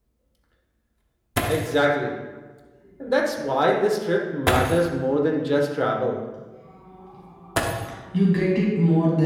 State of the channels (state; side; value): identical; both; correlation 1.00